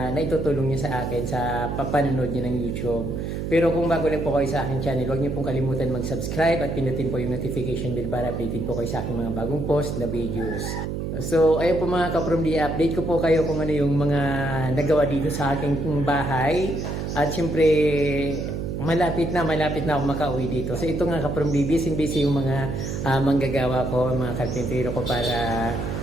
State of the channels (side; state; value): right; noise; hum, 4 dB below the sound